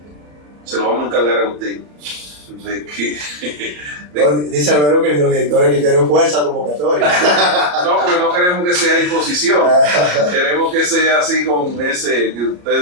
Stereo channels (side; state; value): left; late; 34 ms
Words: lo vamos a encargar a usted. Dice Alberto que los directores que quieren fuerza convocatoria. No, porque no queremos que sea imposición. Queremos que sea así con ese, que